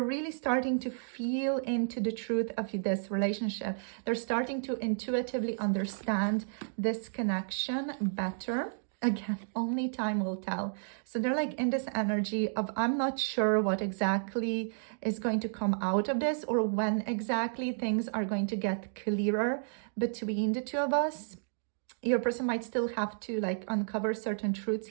really starting to feel into the truth of this relationship. They're starting to intuitively understand this connection better. Again, only time will tell. So they're like in this energy of, I'm not sure what exactly is going to come out of this, or when exactly things are going to get clearer between the two of us. Your person might still have to like uncover certain truths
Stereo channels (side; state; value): left; silent; digital silence